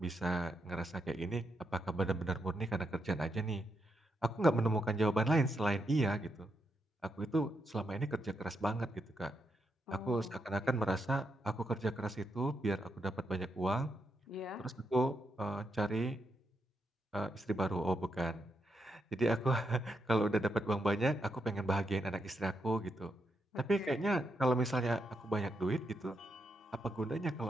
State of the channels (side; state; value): both; normal; correlation 0.82